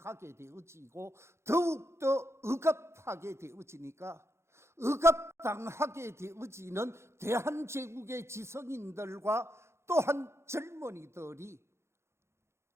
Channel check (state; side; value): late; left; 0.13 ms